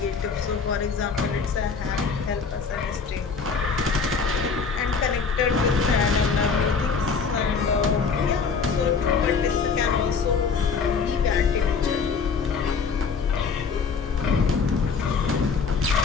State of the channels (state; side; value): quieter; right; 5.4 dB